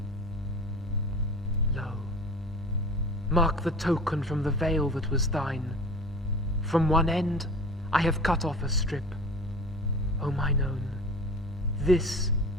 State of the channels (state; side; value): normal; both; correlation 0.38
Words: Lo, mark the token from the veil that was thine. From one end I have cut off a strip. O mine own, this